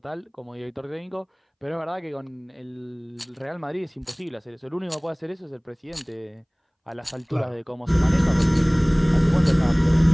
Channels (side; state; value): both; identical; correlation 1.00